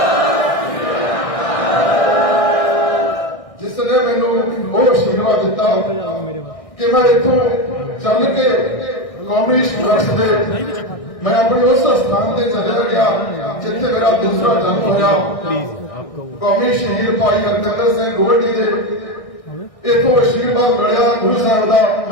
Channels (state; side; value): late; right; 1.6 ms